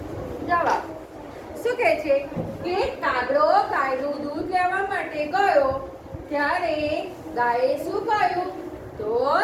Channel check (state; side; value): identical; both; correlation 1.00